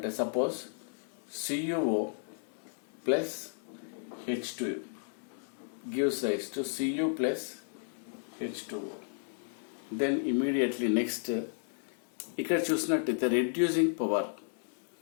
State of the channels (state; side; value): silent; right; digital silence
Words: suppose CuO plus H2 gives rise to Cu plus H2O. Then immediately next ఇక్కడ చూసినట్టయితే reducing power